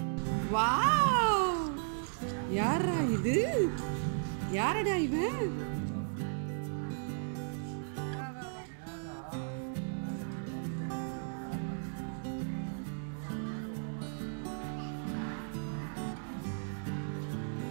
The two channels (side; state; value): left; silent; digital silence